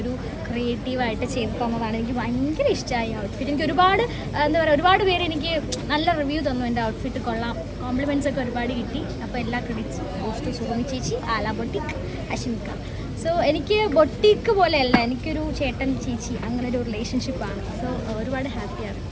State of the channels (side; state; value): both; identical; correlation 1.00